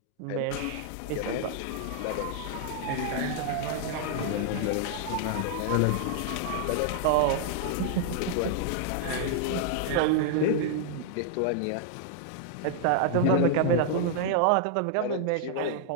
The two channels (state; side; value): different; both; correlation -0.01